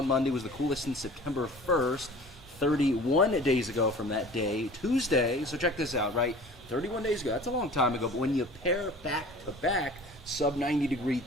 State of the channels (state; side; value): normal; both; correlation 0.43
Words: Monday was the coolest since September 1st, 31 days ago from that day. Tuesday, so check this out, right? 31 days ago, that's a long time ago, but when you pair back to back sub 90 degree